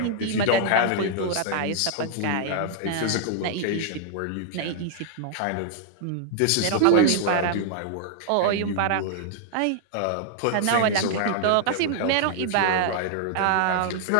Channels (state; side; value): different; both; correlation 0.00